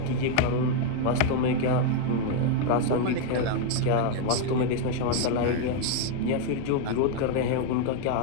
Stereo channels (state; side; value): different; both; correlation 0.00